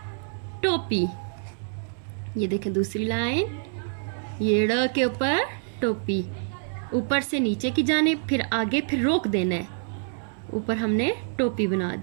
टोपी। ये देखें दूसरी लाइन, ये ड़ के ऊपर टोपी, ऊपर से नीचे की जानिब, फिर आगे, फिर रोक देना है। ऊपर हमने टोपी बना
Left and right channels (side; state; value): left; silent; 61 dB below the other